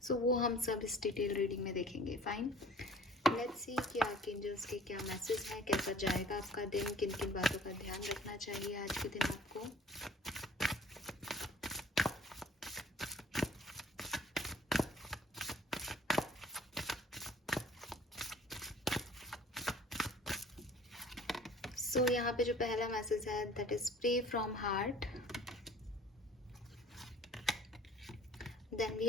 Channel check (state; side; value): normal; both; correlation 0.50